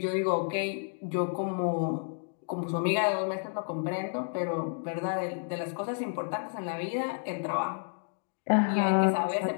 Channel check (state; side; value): silent; right; digital silence